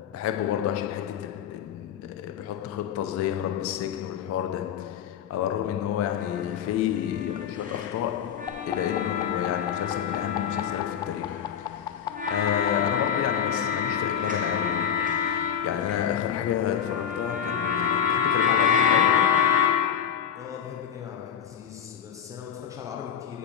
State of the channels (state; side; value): quieter; right; 8.6 dB